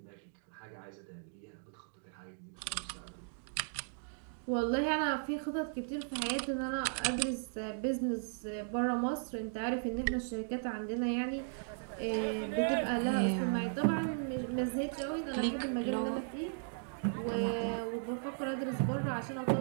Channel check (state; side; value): silent; left; digital silence